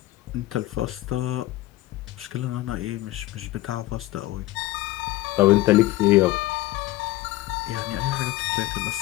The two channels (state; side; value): quieter; right; 17.1 dB